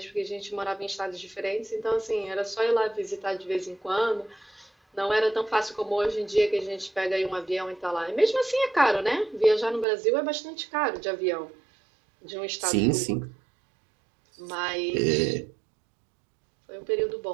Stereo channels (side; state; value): left; drops out; at 9.9 s